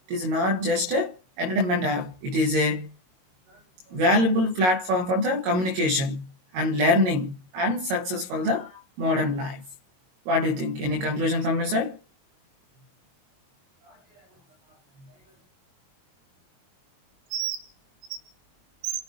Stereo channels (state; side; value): late; left; 22 ms